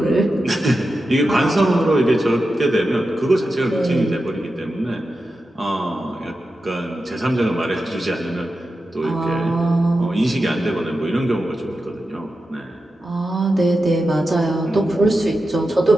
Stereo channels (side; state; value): both; normal; correlation 0.91